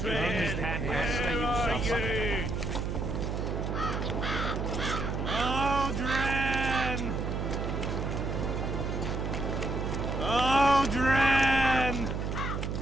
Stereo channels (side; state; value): right; noise; hum, 2 dB below the sound